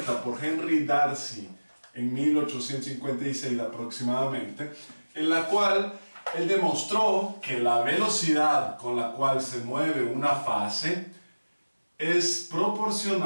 por Henry Darcy en 1856 aproximadamente, en la cual él demostró que la velocidad con la cual se mueve una fase es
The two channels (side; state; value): both; inverted; correlation -1.00